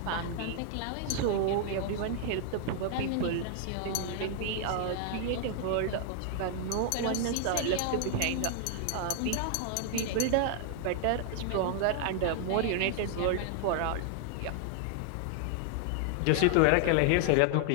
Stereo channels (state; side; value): different; both; correlation 0.00